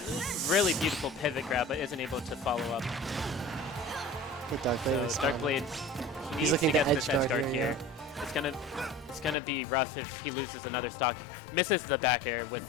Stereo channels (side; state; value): right; drops out; at 9.3 s